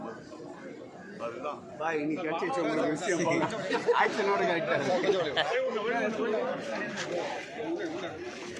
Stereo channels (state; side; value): identical; both; correlation 1.00